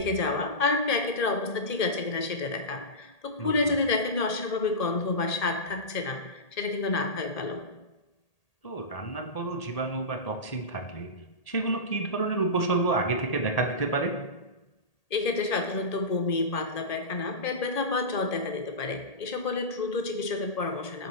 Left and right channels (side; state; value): right; late; 1.8 ms